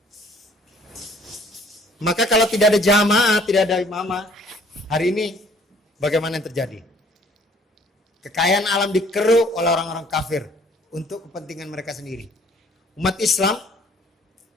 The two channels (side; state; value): both; normal; correlation 0.58